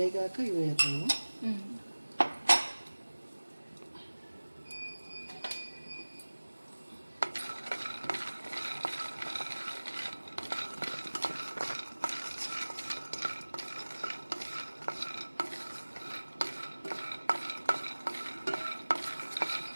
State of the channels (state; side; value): inverted; both; correlation -1.00